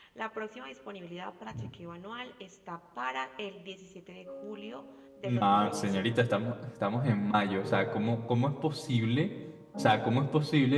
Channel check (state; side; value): identical; both; correlation 1.00